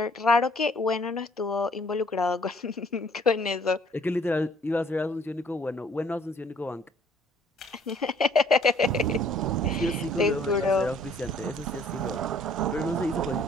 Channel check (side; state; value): both; normal; correlation 0.59